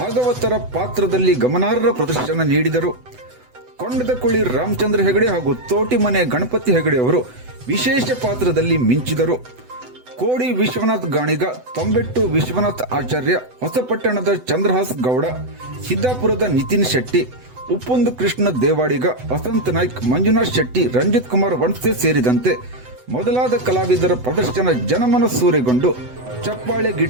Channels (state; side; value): late; left; 8.0 ms